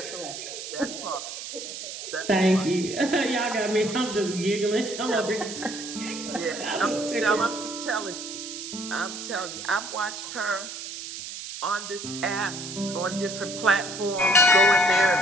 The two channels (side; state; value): right; noise; hiss, 9 dB below the sound